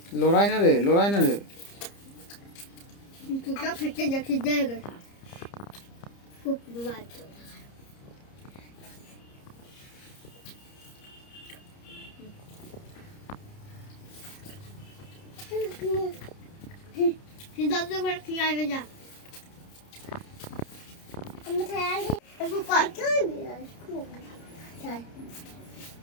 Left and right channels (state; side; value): late; right; 30 ms